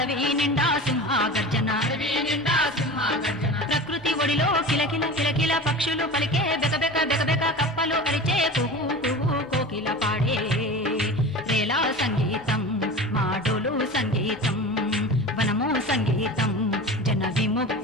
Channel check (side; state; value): both; normal; correlation 0.33